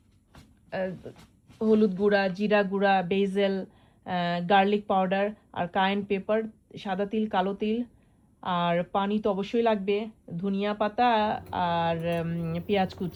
হলুদ গুঁড়া, জিরা গুঁড়া, বেজেল, গার্লিক পাউডার আর কায়েন পেপার, সাদা তিল, কালো তিল, আর পানি তো অবশ্যই লাগবে, ধনিয়া পাতা আর পেঁয়াজ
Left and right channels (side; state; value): both; identical; correlation 1.00